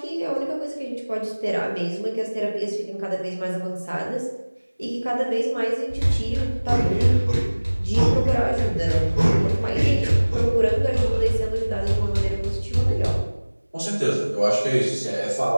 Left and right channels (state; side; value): inverted; both; correlation -1.00